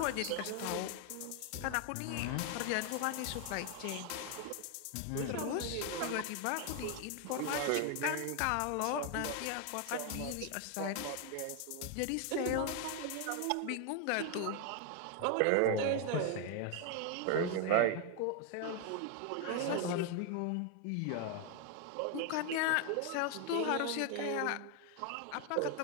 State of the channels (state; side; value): different; both; correlation 0.01